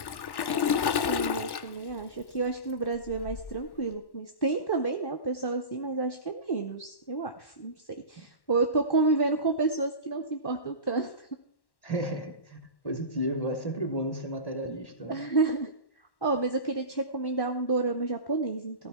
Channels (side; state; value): right; late; 1.1 ms